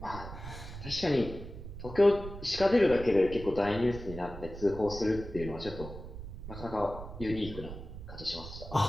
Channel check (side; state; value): right; noise; rumble, 11 dB below the sound